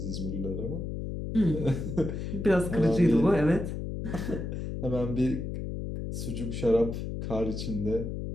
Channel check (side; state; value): left; noise; hum, 5 dB below the sound